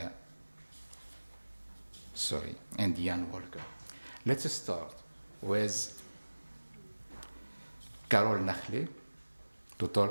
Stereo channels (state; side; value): inverted; both; correlation -1.00